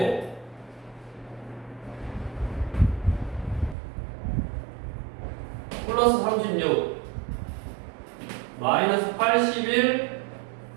플러스 36 마이너스 81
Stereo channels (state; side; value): drops out; left; at 3.8 s